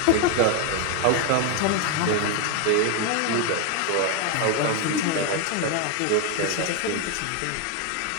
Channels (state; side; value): different; both; correlation 0.01